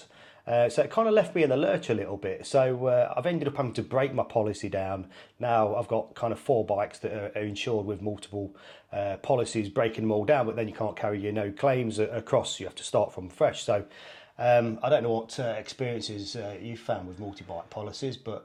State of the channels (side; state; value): both; identical; correlation 1.00